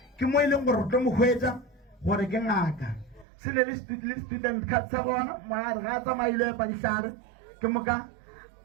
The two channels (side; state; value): left; drops out; at 3.2 s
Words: ke mo e leng gore re tlo mo hwetša gore ke ngaka se le student card sa gona moare ga a tsamaile epa dihlare ke moka